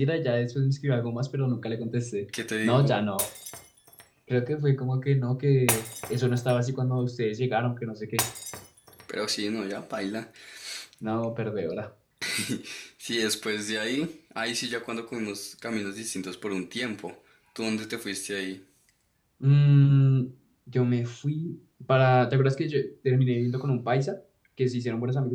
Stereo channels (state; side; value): identical; both; correlation 1.00